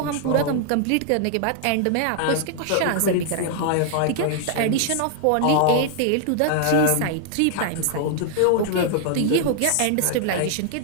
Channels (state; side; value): different; both; correlation 0.00